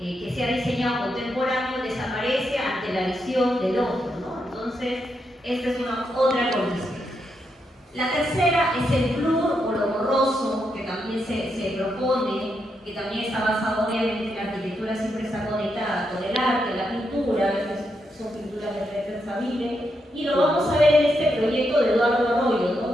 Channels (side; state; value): both; normal; correlation 0.82